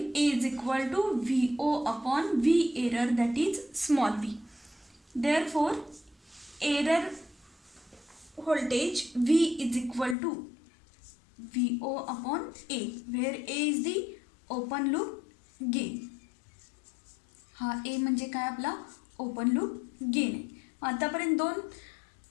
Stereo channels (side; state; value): right; drops out; at 10.2 s